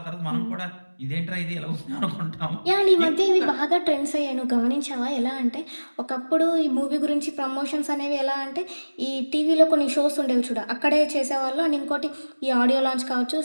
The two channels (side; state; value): both; inverted; correlation -1.00